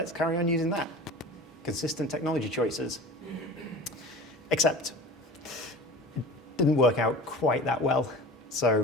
carry on using that. Consistent technology choices. Except it didn't work out quite that well.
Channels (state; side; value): normal; both; correlation 0.37